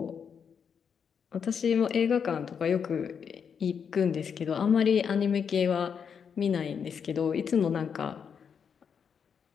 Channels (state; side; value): quieter; right; 6.9 dB